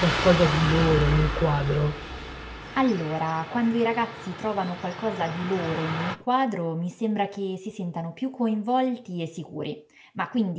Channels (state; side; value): identical; both; correlation 1.00